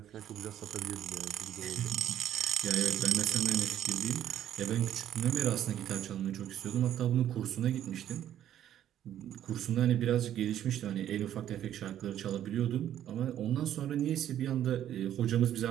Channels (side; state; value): left; quieter; 11.1 dB